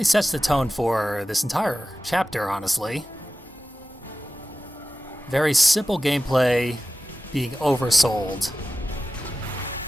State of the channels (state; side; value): normal; both; correlation 0.95